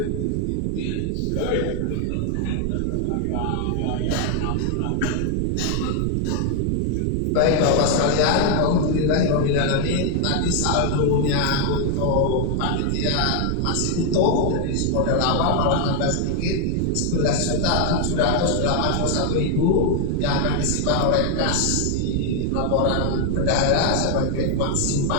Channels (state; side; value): different; both; correlation 0.00